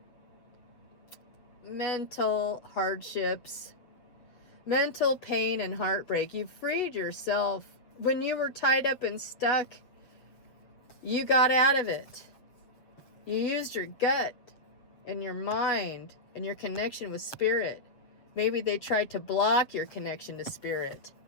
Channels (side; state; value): right; late; 7.8 ms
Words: hardships, mental pain and heartbreak. You freed yourself. When you were tied up and stuck, you got out of it. You used your gut and your mind and your connection with Spirit. Maybe they tried to block your connection to Spirit,